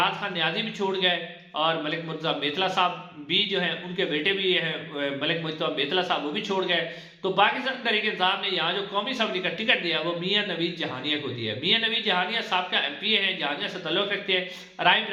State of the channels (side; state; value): both; identical; correlation 1.00